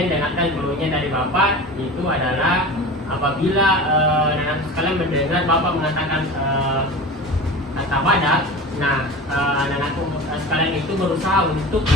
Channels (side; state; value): both; normal; correlation 0.34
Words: dengarkan clue-nya dari Bapak, itu adalah apabila anak-anak sekalian mendengar Bapak mengatakan kata badak, nah anak-anak sekalian itu berusaha untuk